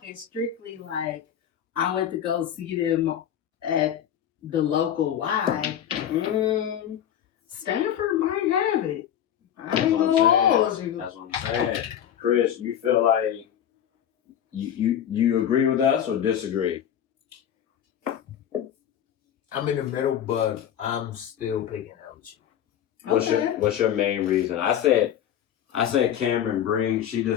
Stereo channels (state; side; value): quieter; right; 9.9 dB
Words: strictly like I went to go see them at the local Y, Stanford might have it. I ain't gonna hold you. That's what I'm saying. Chris, you feel like you agree with us or disagree? I'm in the middle, but I'm still picking LSU. What's your main reason? I said Cameron Brink. She